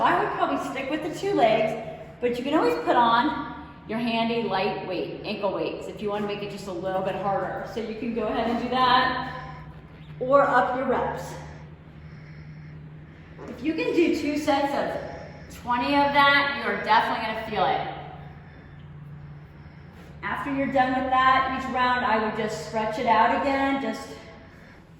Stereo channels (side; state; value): both; identical; correlation 1.00